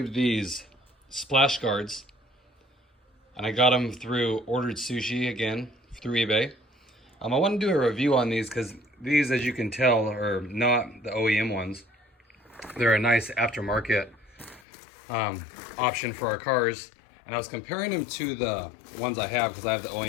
these splash guards and I got them through Ordered Sushi again through eBay. I want to do a review on these because these, as you can tell, are not the OEM ones. They're a nice aftermarket option for our cars, and I was comparing them to the ones I have because I have the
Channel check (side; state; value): right; drops out; at 14.6 s